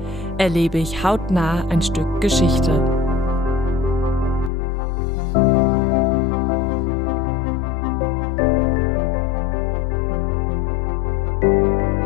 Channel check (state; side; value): drops out; right; at 4.5 s